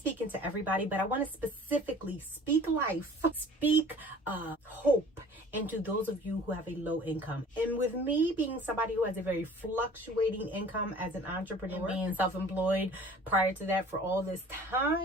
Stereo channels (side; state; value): both; normal; correlation 0.47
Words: to everybody, but I want to specifically speak life, speak hope into those of you who have a low income. And with me being somebody who has a very fluctuating income as an entrepreneur, and being self-employed prior to that for all this